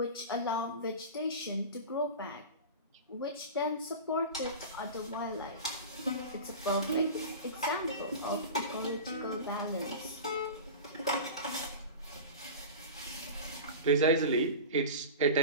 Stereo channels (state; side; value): inverted; both; correlation -0.30